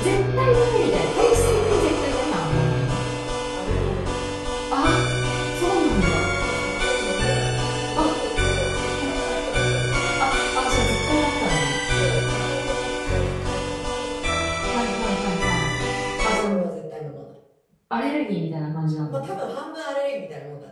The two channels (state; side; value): identical; both; correlation 1.00